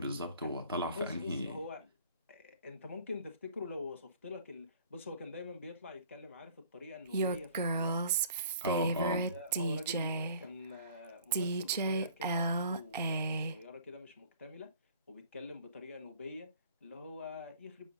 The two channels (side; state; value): both; inverted; correlation -0.52